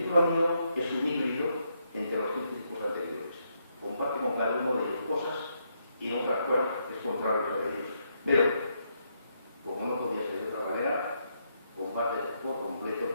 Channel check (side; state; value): both; inverted; correlation -0.78